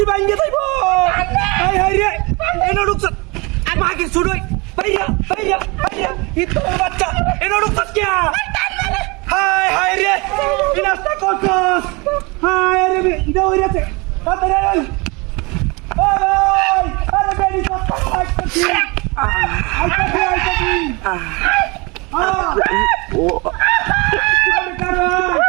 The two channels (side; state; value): left; quieter; 27.1 dB